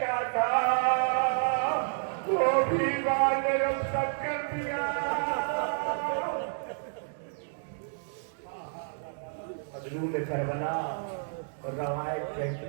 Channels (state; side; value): silent; left; digital silence